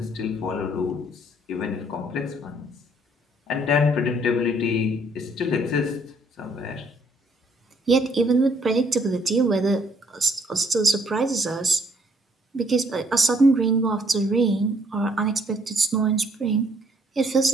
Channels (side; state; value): both; normal; correlation 0.65